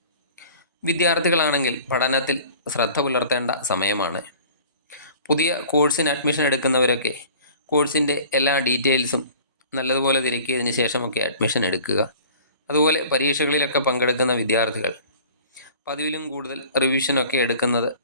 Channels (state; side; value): inverted; both; correlation -0.46